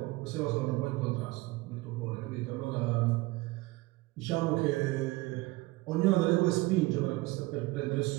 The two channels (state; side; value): quieter; left; 21.0 dB